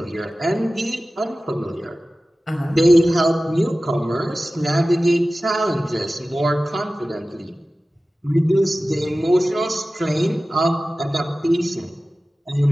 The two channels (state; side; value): normal; both; correlation 0.96